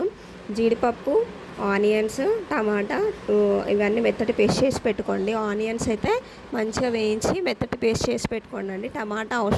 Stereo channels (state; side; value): identical; both; correlation 1.00